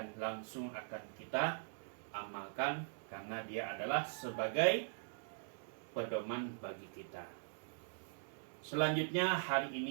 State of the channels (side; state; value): left; silent; digital silence